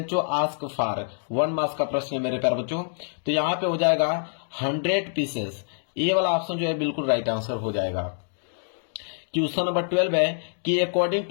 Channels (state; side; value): silent; right; digital silence